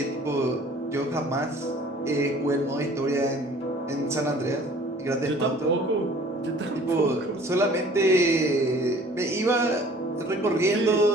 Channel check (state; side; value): normal; both; correlation 0.51